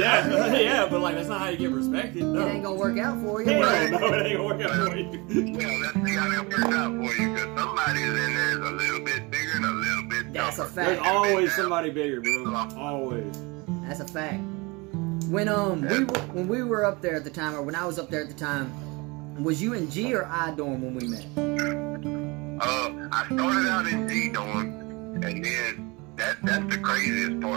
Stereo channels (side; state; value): left; quieter; 26.1 dB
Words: but like that's not how you get respected. No. it ain't gonna work out for you. Hell right? no, it ain't gonna work out for you. Well, let's see how that works out for you, because somebody's in there is a little bit bigger and a little bit That's a tougher. fact. There's always somebody bigger, bro. Always. That's a fact. When when we were up there at the time, or when I was up there at the time, was you in G or I dorm when we met? I started out in G dorm, and then that's the craziest